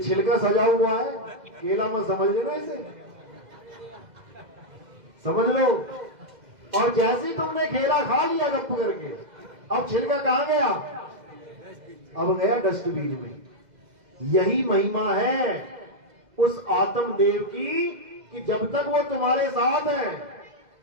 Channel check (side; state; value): left; late; 2.0 ms